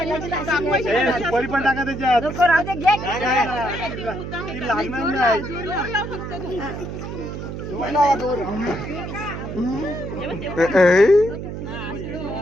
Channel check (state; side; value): noise; right; hum, 7 dB below the sound